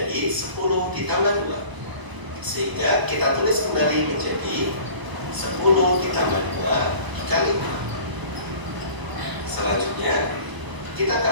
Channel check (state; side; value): late; left; 1.0 ms